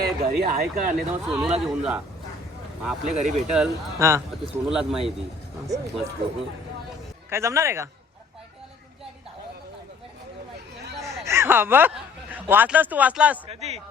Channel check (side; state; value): right; quieter; 3.6 dB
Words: घरी आहे का नाही तर सोनूला घेऊन जा आपल्या घरी भेटल हा ते सोनूलाच माहिती मस्त काय जमणार आहे का हा बघ वाचलास तू वाचलास